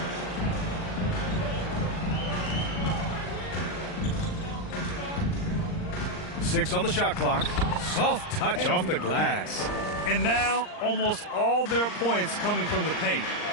Six on the shot clock. Soft touch off the glass. And now almost all their points coming from the paint.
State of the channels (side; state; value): right; late; 39 ms